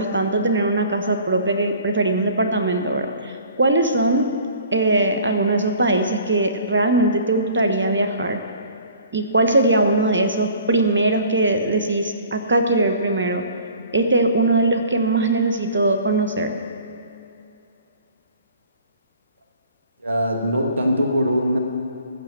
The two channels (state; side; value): inverted; both; correlation -0.50